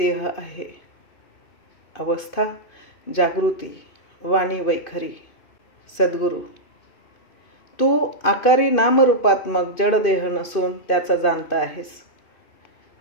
आहे. अवस्था जागृती, वाणी वैखरी. सद्गुरू: तू आकारी नामरूपात्मक जडदेह नसून त्याचा जाणता आहेस.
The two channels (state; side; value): late; right; 2.5 ms